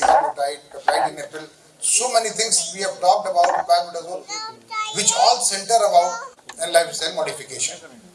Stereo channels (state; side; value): identical; both; correlation 1.00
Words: peptide inhibitor. So many things we have talked about, which all center about lifestyle modification.